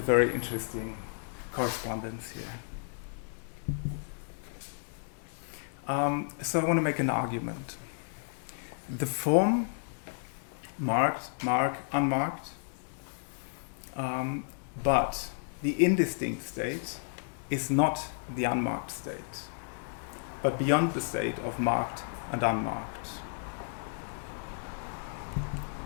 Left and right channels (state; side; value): silent; right; digital silence